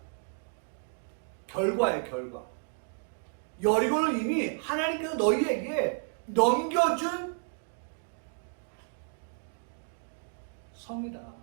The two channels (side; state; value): left; silent; 57 dB below the other